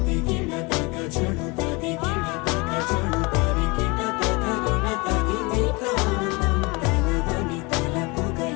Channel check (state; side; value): quieter; right; 26.9 dB